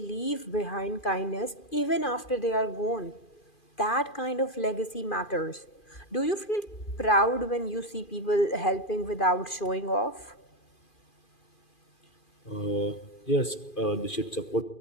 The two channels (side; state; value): right; late; 2.4 ms